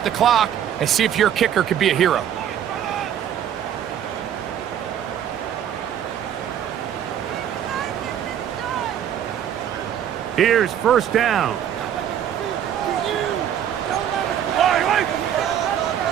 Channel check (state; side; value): quieter; left; 9.9 dB